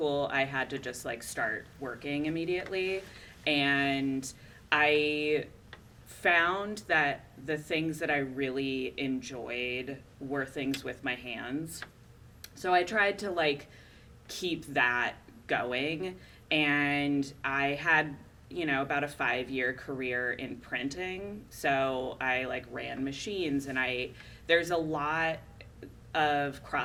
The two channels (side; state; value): both; identical; correlation 1.00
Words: I had to just like start working immediately, and I found that the things that I really enjoyed were things with my hands. So I tried to like keep that going, and I had, about a 5-year career in printing. So I like ran machines, and there's a lot of